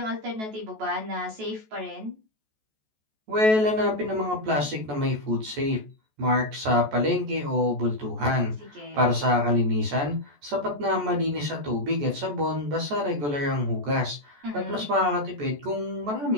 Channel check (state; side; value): late; left; 14 ms